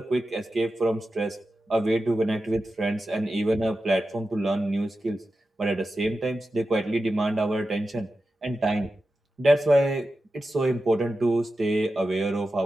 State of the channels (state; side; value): normal; both; correlation 0.92